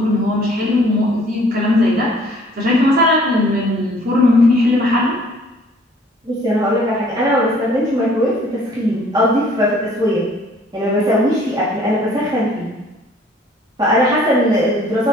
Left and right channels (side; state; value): both; normal; correlation 0.56